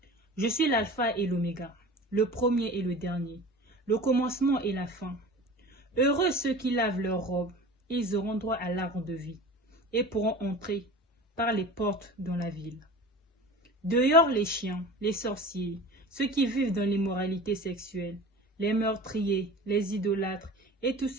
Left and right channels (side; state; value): both; normal; correlation 0.38